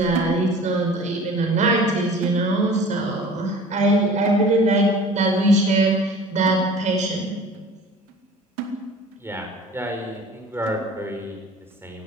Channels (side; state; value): both; normal; correlation 0.44